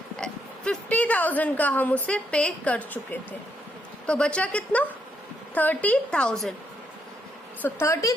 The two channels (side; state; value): both; normal; correlation 0.76